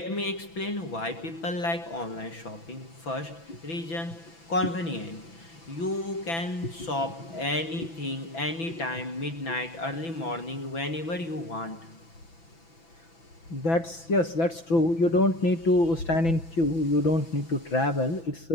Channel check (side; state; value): right; late; 6.0 ms